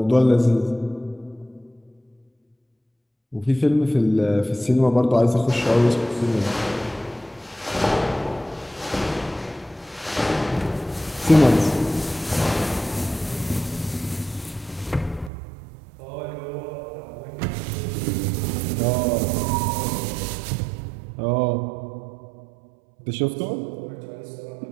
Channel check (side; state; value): left; drops out; at 15.3 s